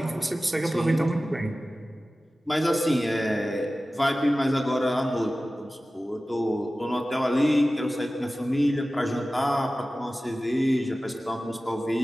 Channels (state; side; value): normal; both; correlation 0.96